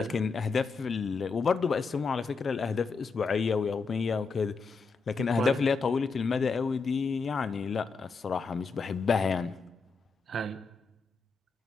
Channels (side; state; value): right; quieter; 4.7 dB